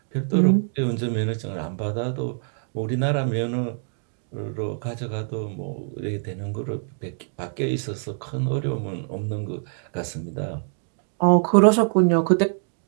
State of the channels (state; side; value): silent; left; 62 dB below the other